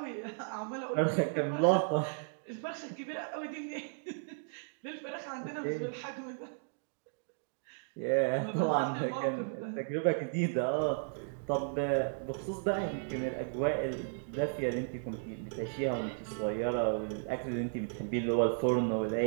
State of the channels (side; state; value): left; silent; digital silence